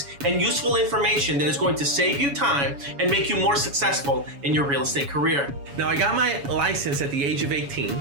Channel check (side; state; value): left; late; 7.1 ms